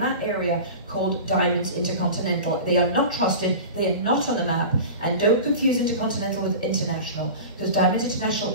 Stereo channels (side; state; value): both; inverted; correlation -0.33